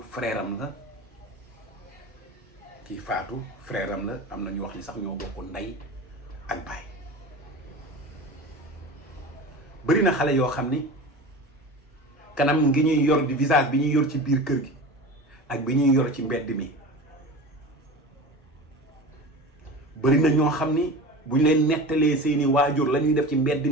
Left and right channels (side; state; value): both; normal; correlation 0.32